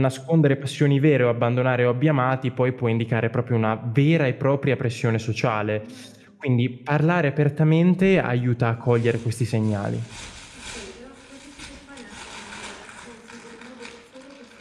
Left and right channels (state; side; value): identical; both; correlation 1.00